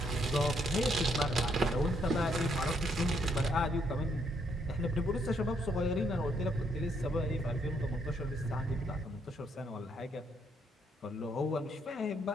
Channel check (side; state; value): both; normal; correlation 0.73